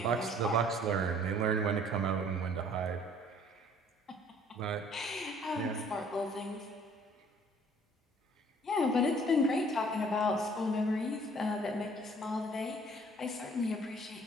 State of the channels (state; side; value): normal; both; correlation 0.56